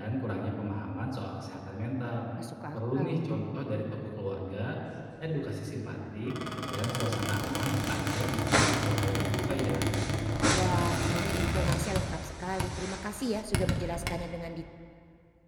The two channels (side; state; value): both; identical; correlation 1.00